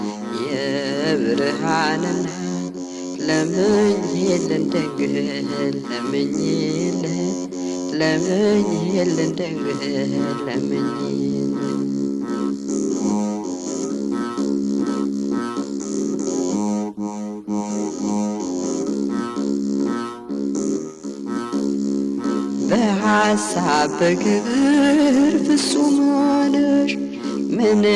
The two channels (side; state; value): both; identical; correlation 1.00